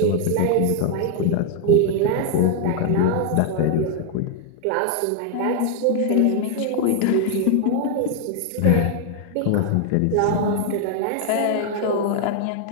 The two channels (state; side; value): different; both; correlation 0.00